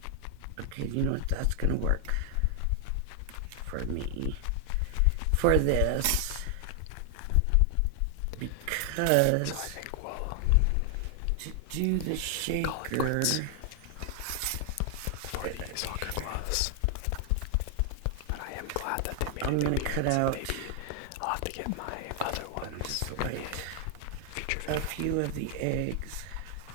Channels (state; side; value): different; both; correlation 0.00